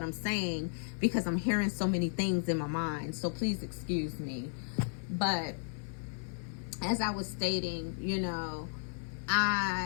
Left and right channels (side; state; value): right; silent; 55 dB below the other